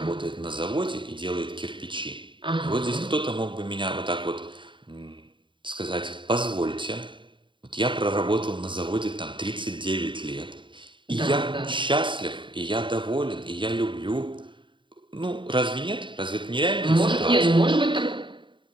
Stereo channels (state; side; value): late; left; 0.23 ms